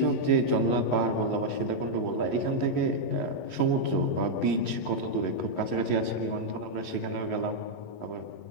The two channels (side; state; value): right; late; 11 ms